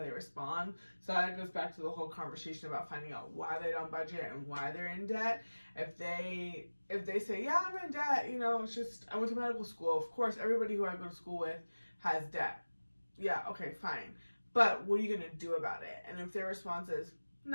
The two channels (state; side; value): inverted; both; correlation -1.00